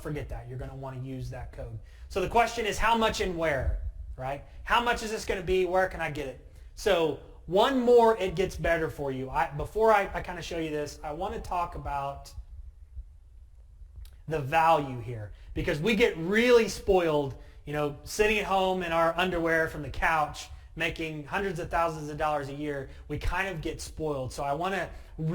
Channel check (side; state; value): both; identical; correlation 1.00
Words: forget that. You're going to want to use that code. So the question is how much and where, right? How much is this going to be? Where can I get it? So one more, it gets better for you. Before I kind of show you this, I want to talk about the value here, because we get really spoiled, sitting at home in our underwear from the couch, making hundreds of thousands of dollars a year. We kind of get spoiled. So I want to